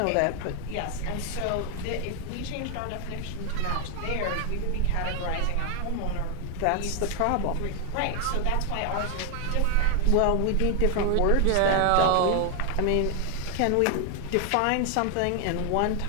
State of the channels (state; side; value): different; both; correlation 0.00